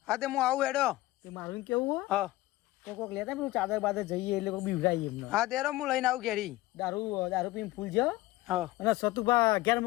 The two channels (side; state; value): right; quieter; 18.0 dB